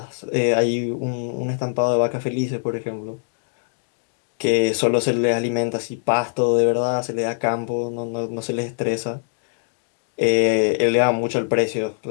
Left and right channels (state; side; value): silent; right; digital silence